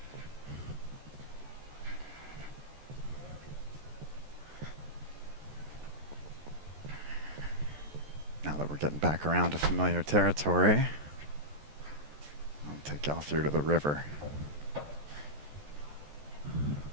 Now that we're getting back around to familiar territory, I'll take y'all through to the river.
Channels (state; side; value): late; left; 14 ms